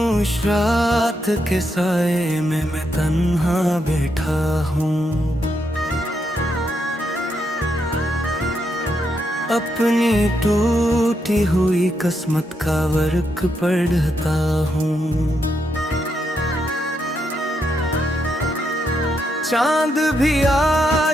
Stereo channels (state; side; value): normal; both; correlation 0.80